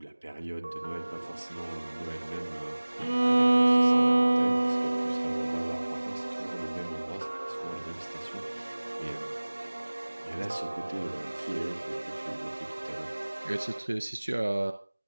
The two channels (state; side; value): inverted; both; correlation -1.00